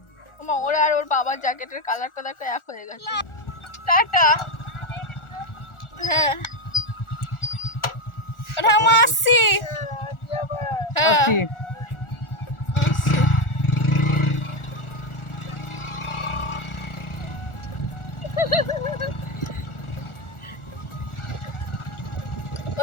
মা, ওরা আর ওর বাবার জ্যাকেটের কালারটা দেখো এক হয়ে গেছে। টাটা। হ্যাঁ ওটা আমি আসছি। হ্যাঁ আসছি।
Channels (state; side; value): late; right; 1.4 ms